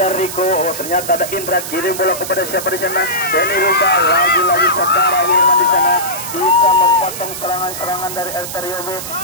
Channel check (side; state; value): right; noise; hiss, 8 dB below the sound